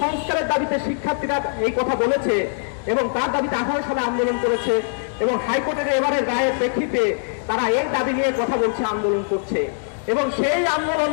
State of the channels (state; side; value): silent; right; digital silence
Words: সংস্কারের দাবিতে শিক্ষার্থীরা এই কথা বলেছে এবং তার দাবিতে 18 সালে আন্দোলন করেছে এবং হাইকোর্টের এবারের রায়ের প্রেক্ষিতে তারা এই দাবি নিয়ে কথা বলছে, আন্দোলন করছে। এবং সেই আন্দোলন